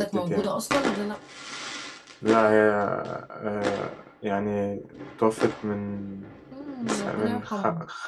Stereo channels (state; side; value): identical; both; correlation 1.00